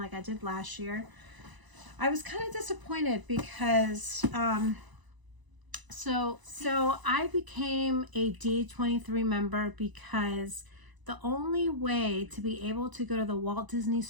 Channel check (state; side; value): late; left; 1.0 ms